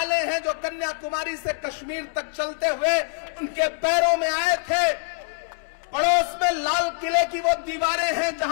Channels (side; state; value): right; silent; 62 dB below the other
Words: हैं जो कन्याकुमारी से कश्मीर तक चलते हुए उनके पैरों में आए थे। पड़ोस में लाल किले की वो दीवारें हैं